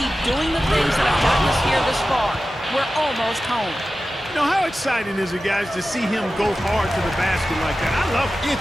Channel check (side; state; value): both; normal; correlation 0.94